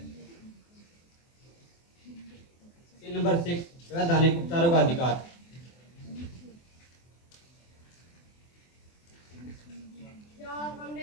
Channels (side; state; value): right; late; 24 ms